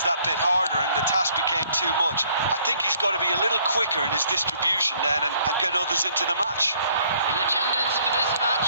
that bit harder and the task became too much. I think he's got to be a little quicker in his distribution then and get others into the match. The attendance for this match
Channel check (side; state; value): both; inverted; correlation -0.63